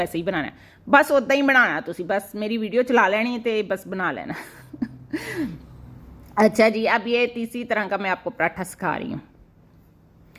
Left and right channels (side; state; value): both; identical; correlation 1.00